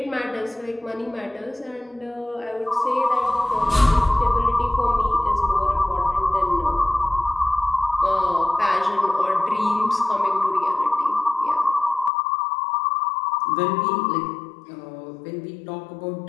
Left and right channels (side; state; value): right; drops out; at 12.1 s